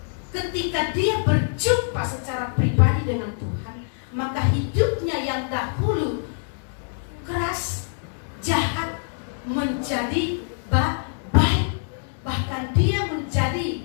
ketika dia berjumpa secara pribadi dengan Tuhan, maka hidupnya yang dahulu keras, jahat, menjadi baik. Bahkan dia menjadi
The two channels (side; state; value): right; silent; digital silence